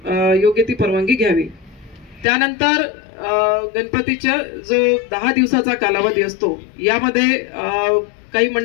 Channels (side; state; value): right; drops out; at 2.2 s